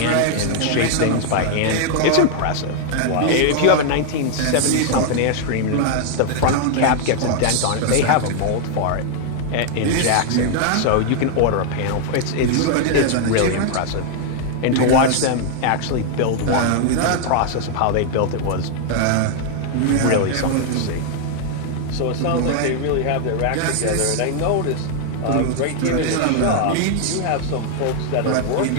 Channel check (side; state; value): both; different; correlation 0.00